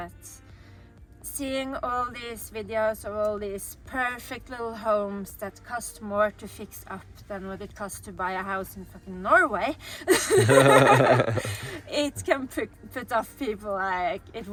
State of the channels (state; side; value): identical; both; correlation 1.00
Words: seeing all these videos of all these perfect little homes that cost more to fix up than what it costs to buy a house in fucking Norway, it can put off people. Like, it